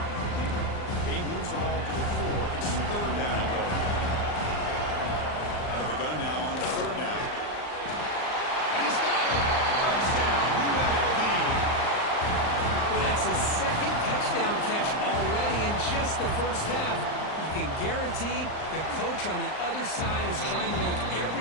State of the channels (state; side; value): late; right; 39 ms